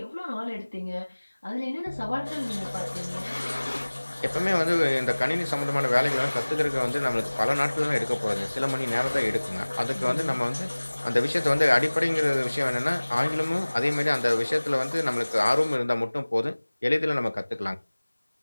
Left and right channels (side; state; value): both; inverted; correlation -1.00